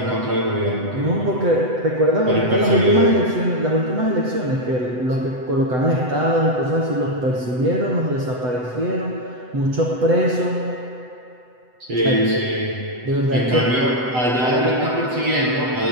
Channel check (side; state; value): left; late; 8.0 ms